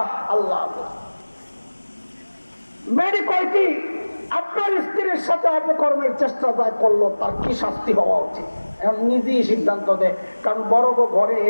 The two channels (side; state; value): both; inverted; correlation -1.00